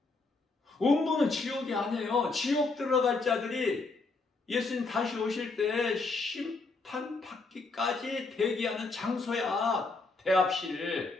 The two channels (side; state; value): right; quieter; 3.7 dB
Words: 음부는 지옥이 아니에요. 지옥 들어갈 자들이 예수님 다시 오실 때 심판받기까지 대기하는 장소야.